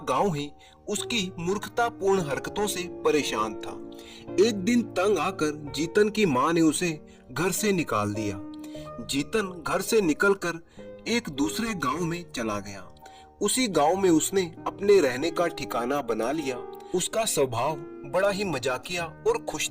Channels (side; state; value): both; identical; correlation 1.00